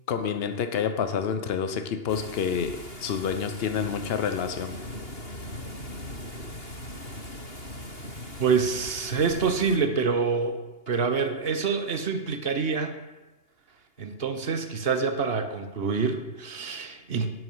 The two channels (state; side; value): late; right; 2.8 ms